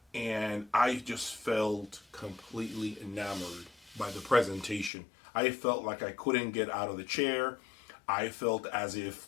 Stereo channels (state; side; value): drops out; right; at 4.9 s